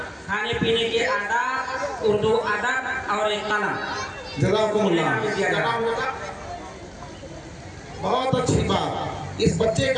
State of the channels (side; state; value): both; identical; correlation 1.00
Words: खाने पीने के आदाब, उर्दू अदब और एक कलम। जज़ाकुमुल्लाह। बहुत अच्छी बात। इस बच्चे